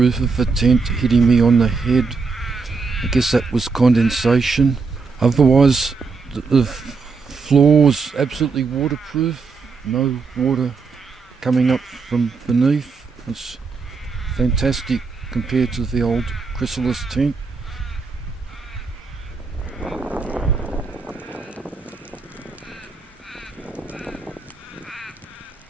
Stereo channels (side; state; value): left; quieter; 4.7 dB